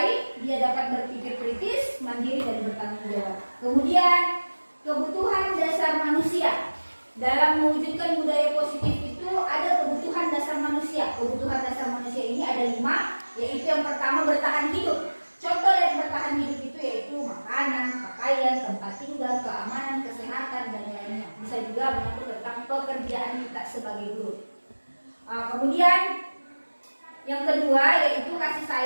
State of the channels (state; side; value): inverted; both; correlation -1.00